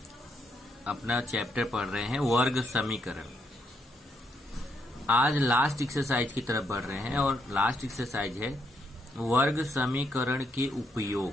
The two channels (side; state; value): both; normal; correlation 0.77